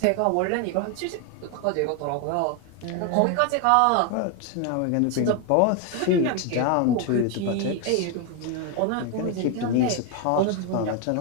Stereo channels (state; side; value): different; both; correlation 0.01